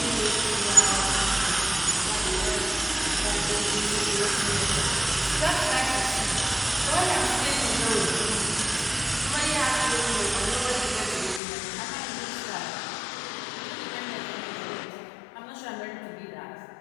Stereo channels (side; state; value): right; drops out; at 11.4 s